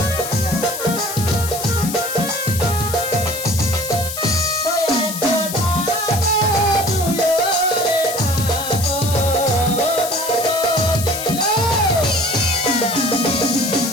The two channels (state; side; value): noise; left; hiss, 7 dB below the sound